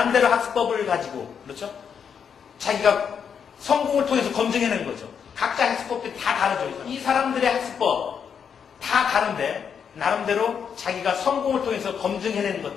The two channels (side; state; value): right; quieter; 7.2 dB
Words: 학습법을 가지고 그렇죠? 자기가 성공을 통해서 검증해낸 거죠. 각자 학습법들이 다 다르죠. 이 사람들의 학습법 다 다른데 나름대로 자기가 성공을 통해서 검증해내는